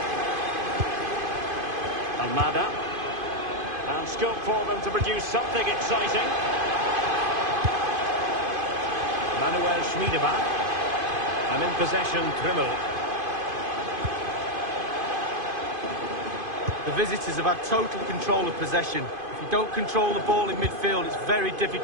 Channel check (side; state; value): left; late; 2.5 ms